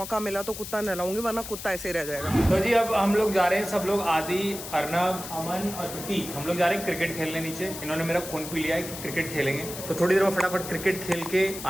मिला तो कुत्ता नहलाऊंगी, वरना कुत्ता ऐसे ही रह जाएगा। तो जी अब हम लोग जा रहे हैं, सब लोग, आदि, अर्नब, अमन और प्रतीक, हम लोग जा रहे हैं क्रिकेट खेलने नीचे। इन्होंने मेरा खून पी लिया है कि क्रिकेट खेलेंगे, तो थोड़ी देर में फटाफट क्रिकेट खेल के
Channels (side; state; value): left; noise; hiss, 10 dB below the sound